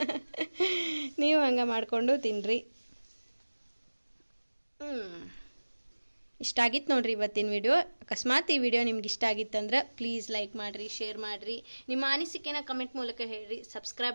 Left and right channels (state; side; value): inverted; both; correlation -1.00